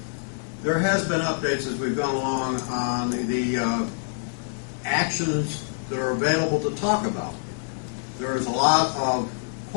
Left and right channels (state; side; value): silent; right; digital silence